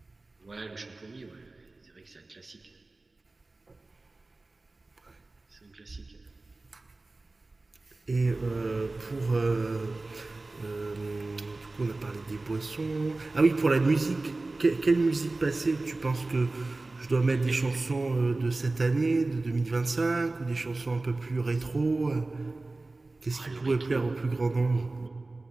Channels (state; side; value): quieter; left; 3.2 dB